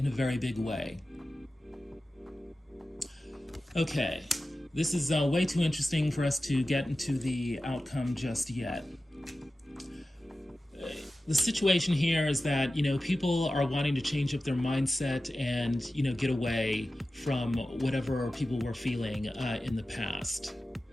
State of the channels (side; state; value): both; normal; correlation 0.94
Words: a very big way. Okay, this is way too interesting for us to get into the outcome just yet. The situation here is that, people are wanting to change up their mindset and, get away from whatever people were feeling in the past.